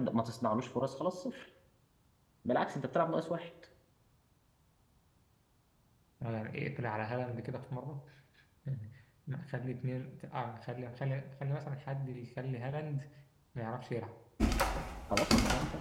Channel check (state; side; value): identical; both; correlation 1.00